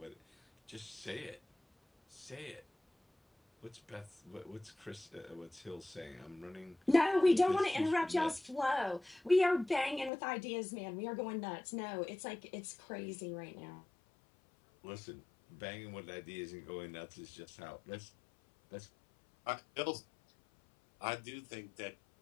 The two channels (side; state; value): right; drops out; at 10.1 s